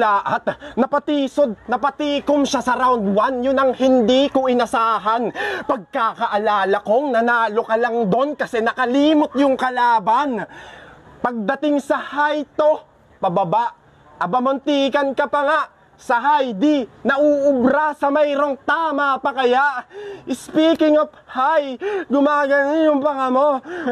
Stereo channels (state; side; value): identical; both; correlation 1.00